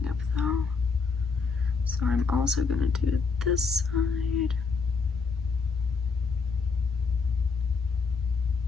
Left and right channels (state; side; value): quieter; right; 4.9 dB